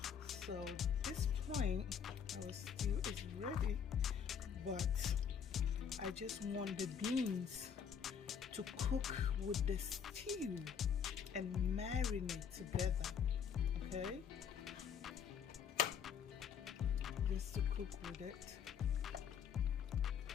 So at this point our stew is ready, but I just want the beans to cook with the stew and marinate together, okay? Just to cook with it.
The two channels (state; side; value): quieter; right; 7.5 dB